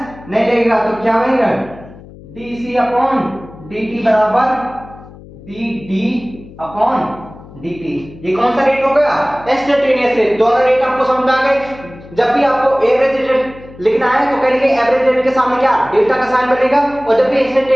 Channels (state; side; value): noise; left; hum, 19 dB below the sound